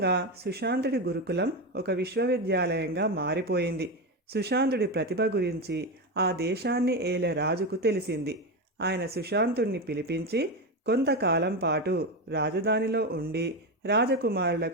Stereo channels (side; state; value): both; normal; correlation 0.15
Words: సుశాంతుడి గురుకులం ఒక విశ్వవిద్యాలయంగా మారిపోయింది. సుశాంతుడి ప్రతిభ గురించి ఆ దేశాన్ని ఏలే రాజుకు తెలిసింది. ఆయన సుశాంతుడిని పిలిపించి కొంతకాలం పాటు రాజధానిలో ఉండి